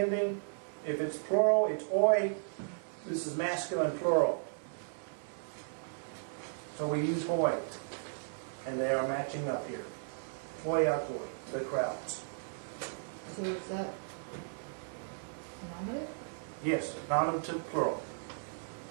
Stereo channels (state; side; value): silent; left; digital silence